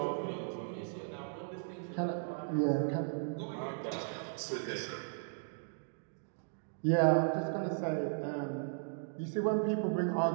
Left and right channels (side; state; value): left; silent; digital silence